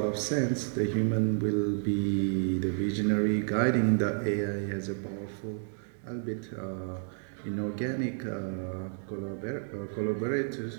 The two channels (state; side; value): silent; left; 57 dB below the other